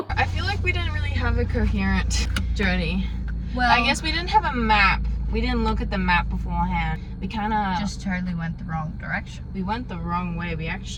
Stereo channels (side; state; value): both; identical; correlation 1.00